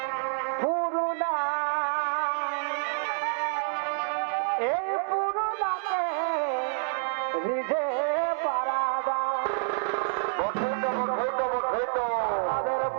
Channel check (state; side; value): silent; left; digital silence